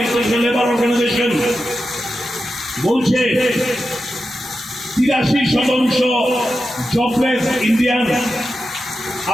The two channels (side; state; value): both; normal; correlation 0.90